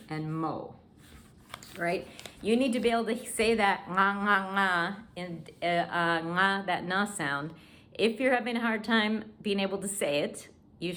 and mo. Right? You need to be able to say that nga, and nga, that na sound. If you're having a hard time being able to say it, you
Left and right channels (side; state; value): both; identical; correlation 1.00